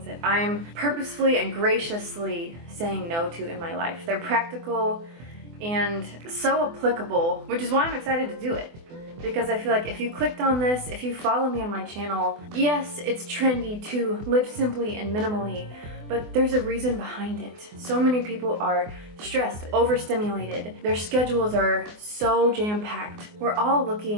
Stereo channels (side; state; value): left; late; 24 ms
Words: that I'm purposefully and graciously saying no to in my life. They're practical and so applicable, which is why I'm excited to do it. Because I feel like if you clicked on this, if you follow me on my channel, yes, it's trendy to live simply and minimally, but there's a reason behind it. So many people are stressed, overstimulated. Their schedules are so jam-packed. We're all